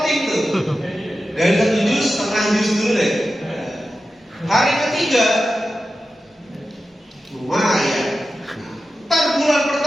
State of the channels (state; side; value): normal; both; correlation 0.92